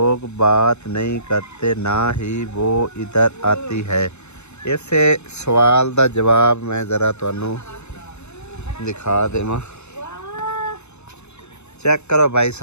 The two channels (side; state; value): right; late; 0.81 ms